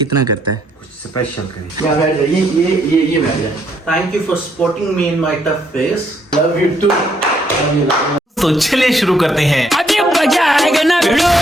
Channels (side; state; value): both; normal; correlation 0.71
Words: करता है, कुछ स्पेशल करें। क्या बैठ जाए ये बैठ जाए। Thank you for supporting me in my tough phase, love you too. तो चलिए शुरू करते हैं। अभी मजा आएगा ना video.